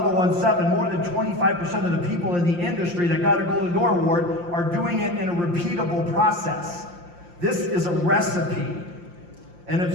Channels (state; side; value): late; left; 5.7 ms